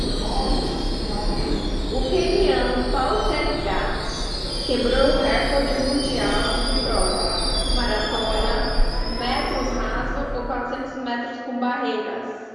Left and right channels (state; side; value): identical; both; correlation 1.00